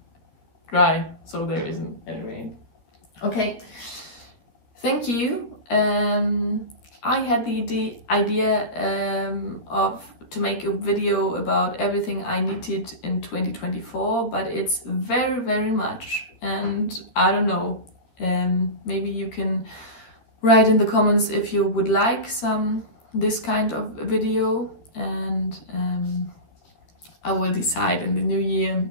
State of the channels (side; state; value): right; late; 13 ms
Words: dry, so there isn't any rain. Okay, thank you. I had the idea to make a video about everything I knitted in 2024, but it's very, very much, and I don't know, maybe you can write in the comments if you would like this kind of video, and I will decide in the new year.